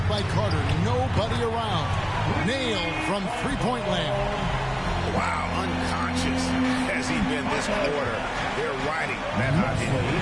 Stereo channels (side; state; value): both; identical; correlation 1.00